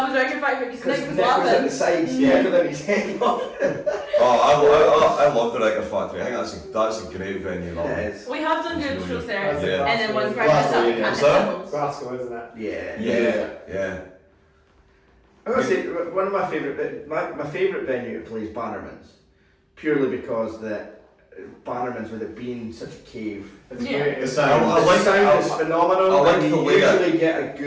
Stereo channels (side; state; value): both; identical; correlation 1.00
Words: was Record Factory because Because Nick was Nick was at the laughing. sides, Yeah. yeah, than his head off. I love the Record Factory. I think that's a great venue. That It one. is. We have done good shows there. Yeah. And then once we're Glasgow, up, we yeah. can't Is that? miss Glasgow, isn't it? Yeah. Yeah. I gotta say, one of my favourite venue to play is Bannerman's, purely because Bannerman's, with it being such a cave, It's Yeah. great. The It's sound. the sound is phenomenal. I like and the you way it- usually get a